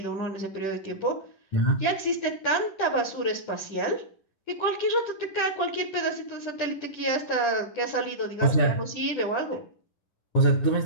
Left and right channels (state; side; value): late; right; 10 ms